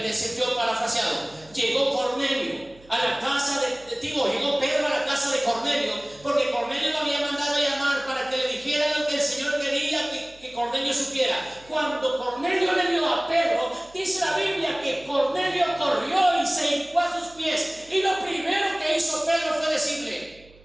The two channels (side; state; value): right; noise; hum, 25 dB below the sound